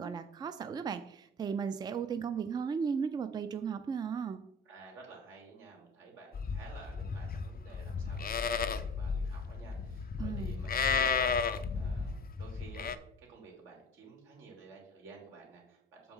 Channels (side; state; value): both; normal; correlation 0.41